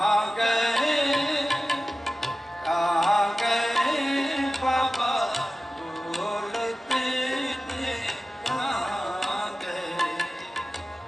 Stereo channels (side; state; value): both; normal; correlation 0.95